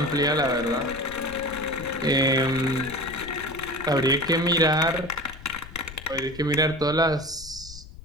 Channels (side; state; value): left; noise; rumble, 15 dB below the sound